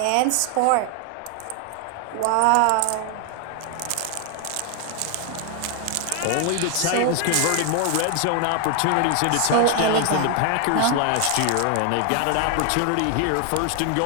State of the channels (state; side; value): different; both; correlation 0.00